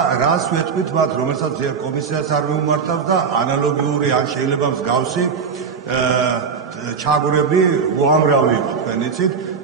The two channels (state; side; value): quieter; left; 5.9 dB